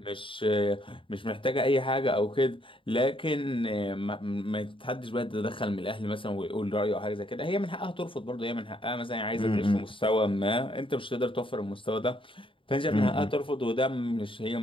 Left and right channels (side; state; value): right; late; 0.25 ms